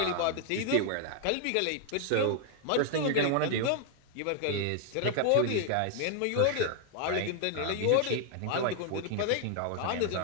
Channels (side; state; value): both; different; correlation 0.00